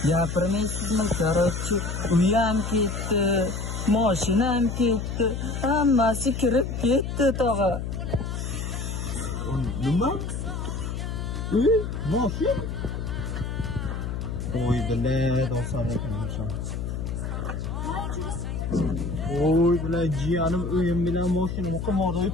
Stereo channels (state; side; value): noise; left; hum, 4 dB below the sound